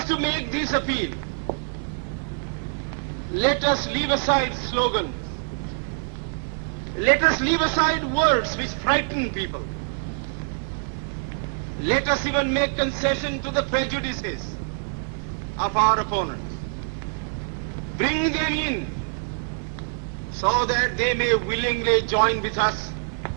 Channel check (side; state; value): left; silent; digital silence